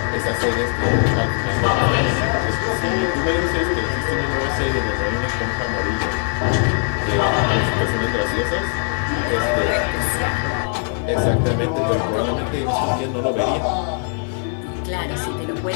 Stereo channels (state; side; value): silent; right; 56 dB below the other